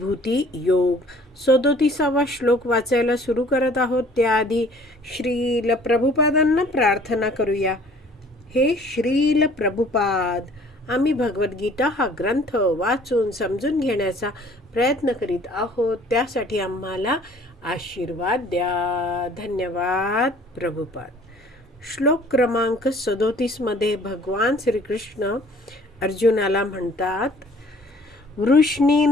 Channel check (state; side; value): normal; both; correlation 0.54